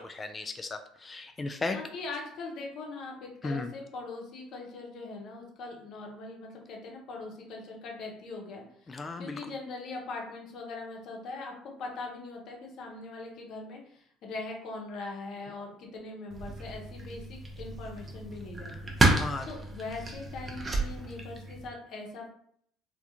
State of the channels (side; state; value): both; normal; correlation 0.70